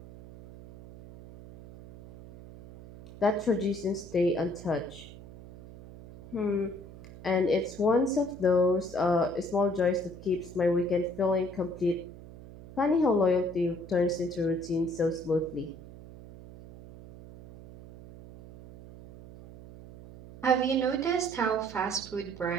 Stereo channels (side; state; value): right; noise; hum, 17 dB below the sound